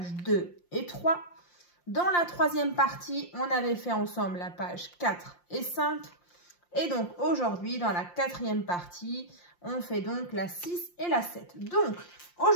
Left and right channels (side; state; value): right; late; 5.7 ms